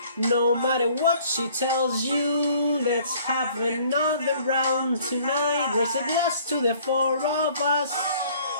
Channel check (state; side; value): inverted; both; correlation -0.57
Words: No matter what she tells you, let's have another round tonight. Raise a glass to the 4 of us,